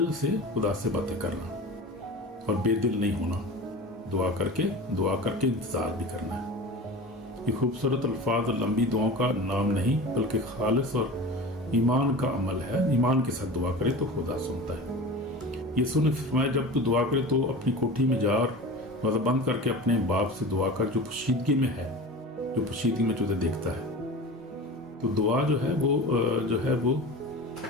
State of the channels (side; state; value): both; normal; correlation 0.33